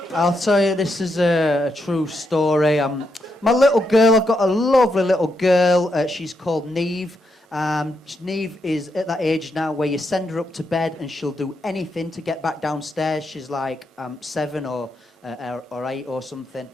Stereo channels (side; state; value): both; normal; correlation 0.81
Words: I'll tell you, this is a true story. My little girl, I've got a lovely little girl. She's called Neve. Neve is at that age now where you send her up to bed and she'll do anything to get back downstairs. She's like 7 or 8 or something.